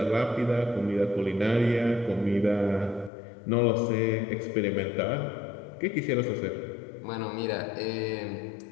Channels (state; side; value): drops out; right; at 3.1 s